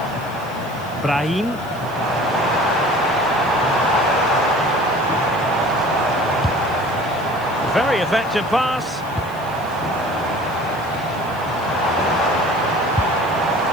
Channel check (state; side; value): noise; left; hiss, 23 dB below the sound